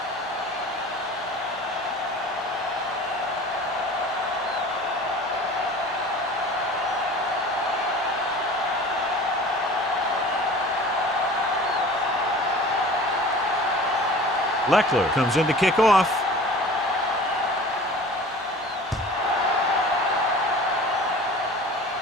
Leckler comes in to kick off.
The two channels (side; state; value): both; normal; correlation 0.41